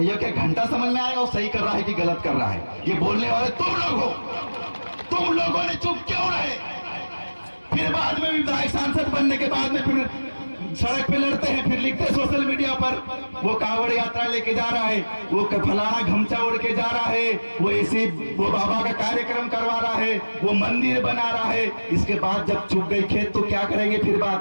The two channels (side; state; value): both; inverted; correlation -1.00